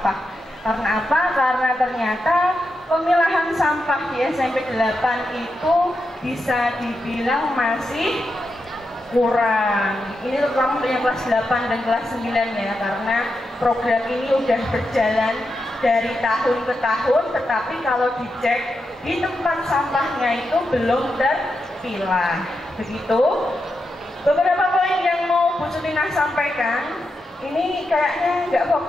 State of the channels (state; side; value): normal; both; correlation 0.87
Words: Karena apa? Karena ternyata pemilahan sampah di SMP 8 itu bisa dibilang masih kurang. Ini terutama untuk yang kelas 8 dan kelas 9 ya, karena program ini udah berjalan dari tahun ke tahun, tetapi kalau dicek di tempat sampahnya itu belum terpilah. Begitu. Beberapa poin yang mau Bu Sutinah sampaikan, ini kayaknya nggak